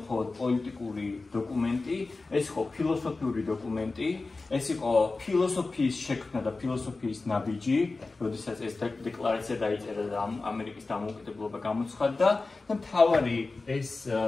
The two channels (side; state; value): right; quieter; 3.6 dB